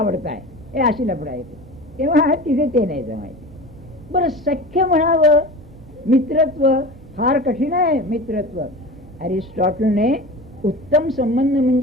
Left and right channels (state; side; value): normal; both; correlation 0.33